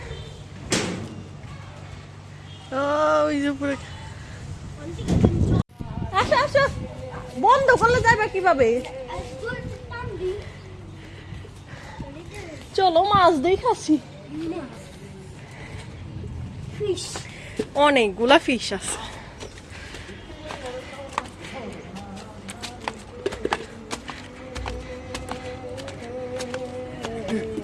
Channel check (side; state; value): both; identical; correlation 1.00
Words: আসো আসো, বন্ধ করলে যাবে কিভাবে? চলো মাছ দেখাচ্ছি, অনেকগুলা ফিশ আছে।